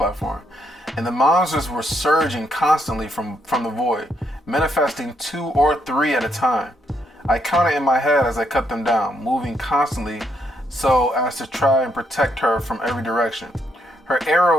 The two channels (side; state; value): both; normal; correlation 0.76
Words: And the monsters were surging constantly from the void, manifesting 2 or 3 at a time. I counted in my head as I cut them down, moving constantly so as to try and protect her from every direction. Her